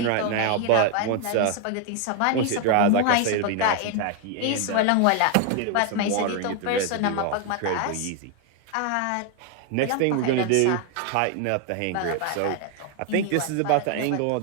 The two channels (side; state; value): both; different; correlation 0.01